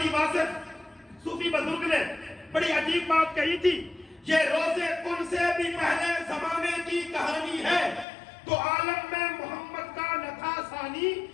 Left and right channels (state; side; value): drops out; right; at 8.1 s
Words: واصف صوفی بزرگ نے بڑی عجیب بات کہی تھی، یہ روزے کن سے بھی پہلے زمانے کی کہانی ہے۔ تو عالم میں محمد کا نہ تھا ثانی